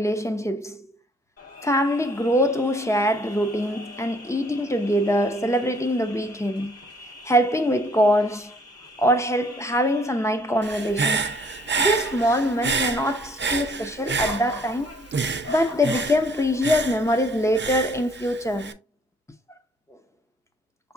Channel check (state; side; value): normal; both; correlation 0.61